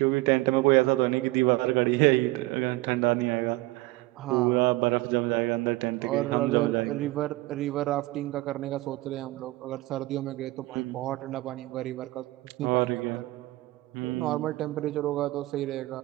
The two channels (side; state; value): left; quieter; 20.0 dB